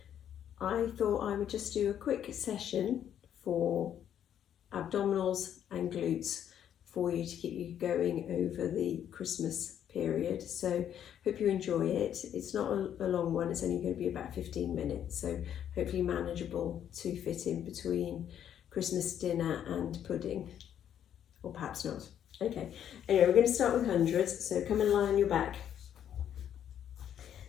I thought I would just do a quick session for abdominals and glutes for you to keep you going over the Christmas period. So hope you enjoy it. It's not a long one, it's only going to be about 15 minutes, so hopefully manageable to fit in between Christmas dinner and pudding, or perhaps not. Okay, anyway, we're going to start with hundreds, so come and lie on your back.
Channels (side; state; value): right; quieter; 9.8 dB